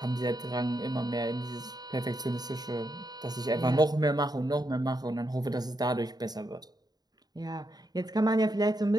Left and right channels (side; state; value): left; late; 0.19 ms